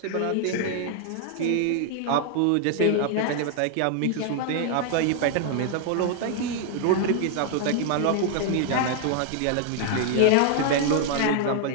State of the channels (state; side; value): different; both; correlation 0.00